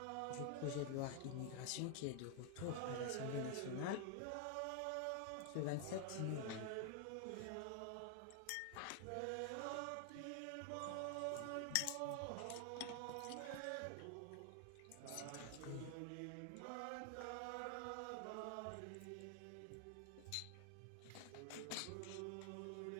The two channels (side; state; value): both; different; correlation 0.00